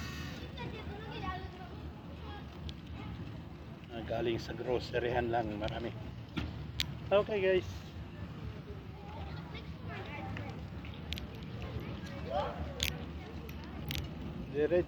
Galing sa groceryhan lang, marami. Okay guys.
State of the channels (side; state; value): both; identical; correlation 1.00